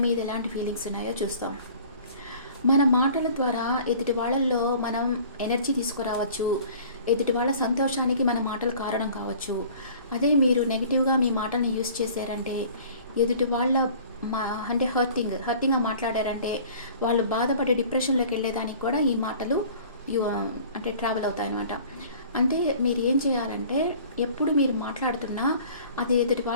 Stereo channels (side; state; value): both; inverted; correlation -0.48